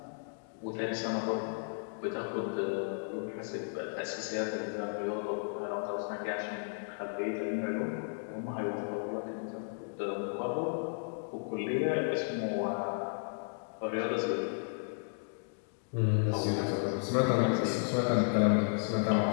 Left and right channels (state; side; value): silent; right; digital silence